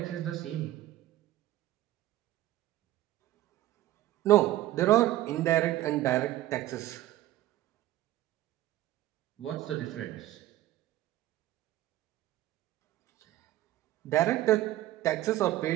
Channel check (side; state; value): left; quieter; 15.0 dB